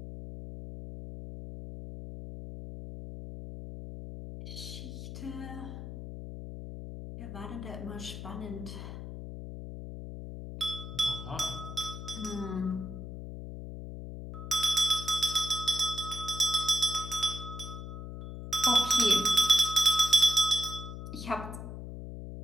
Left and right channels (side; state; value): left; noise; hum, 9 dB below the sound